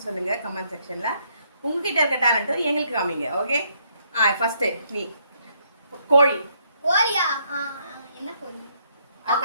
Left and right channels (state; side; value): inverted; both; correlation -0.71